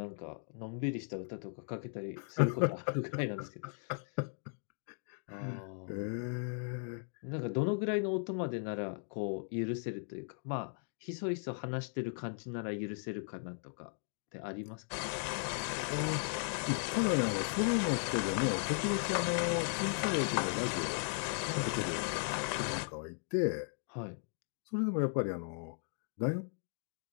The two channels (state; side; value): silent; right; 53 dB below the other